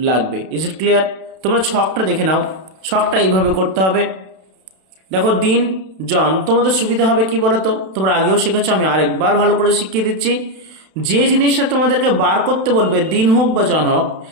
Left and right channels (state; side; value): late; left; 31 ms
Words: লাগবে? Is it clear? তোমরা ছকটা দেখে নাও। ছকটা এইভাবে করতে হবে। দেখো, দিন জন, তোমাদের সুবিধা হবে কি বলতো, তোমরা আগেও শিখেছো, আমি আরেকবার ভালো করে শিখিয়ে দিচ্ছি। যে জিনিসটা তোমাদেরকে বার করতে বলবে, দিন হোক বা জন হোক,